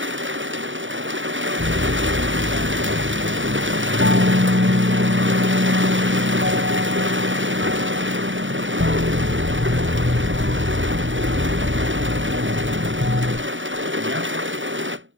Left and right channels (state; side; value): late; left; 0.56 ms